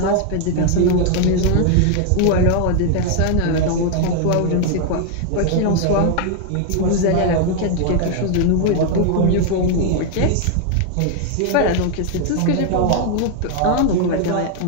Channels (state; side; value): different; both; correlation 0.00